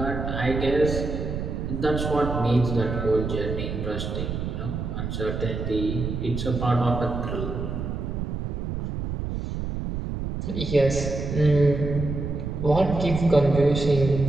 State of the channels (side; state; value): right; noise; rumble, 4 dB below the sound